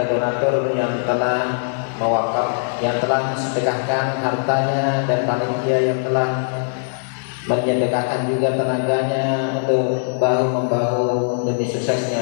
donatur yang telah mewakaf, yang telah sedekahkan hartanya, dan panitia yang telah menyedekahkan juga tenaganya untuk bahu-membahu demi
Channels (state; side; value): silent; right; digital silence